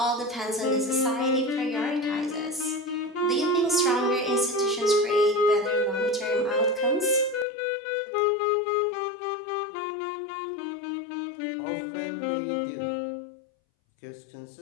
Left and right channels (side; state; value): right; drops out; at 7.5 s